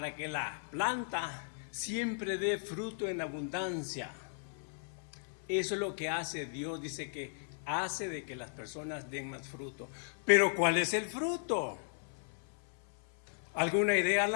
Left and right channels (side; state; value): right; silent; 54 dB below the other